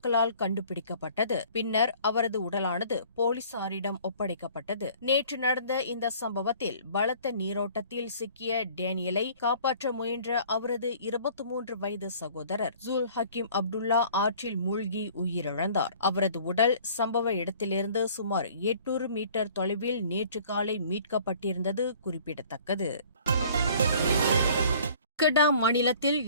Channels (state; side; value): inverted; both; correlation -0.52